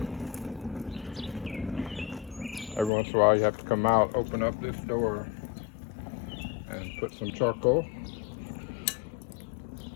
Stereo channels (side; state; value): right; drops out; at 2.9 s